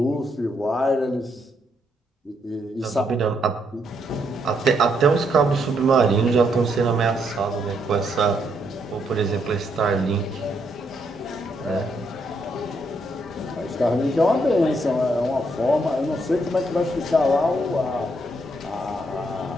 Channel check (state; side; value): normal; both; correlation 0.75